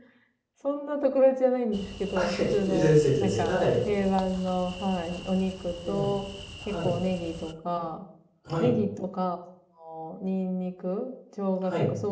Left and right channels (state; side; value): identical; both; correlation 1.00